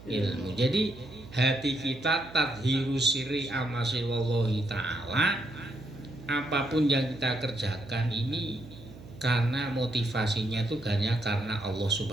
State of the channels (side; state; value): right; noise; hum, 17 dB below the sound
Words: ilmu. Jadi hati kita tadhirus sirri amasi wallahi ta'ala, apapun yang kita kerjakan ini karena motivasinya itu hanya karena Allah